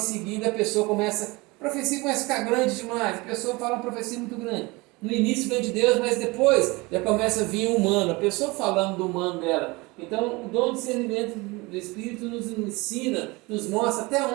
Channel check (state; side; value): quieter; left; 24.1 dB